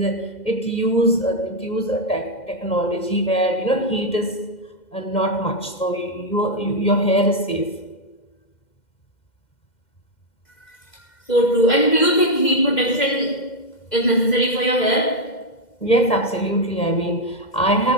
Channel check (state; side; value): late; right; 2.1 ms